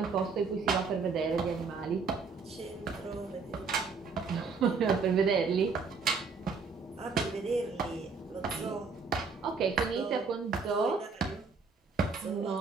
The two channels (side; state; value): left; quieter; 4.9 dB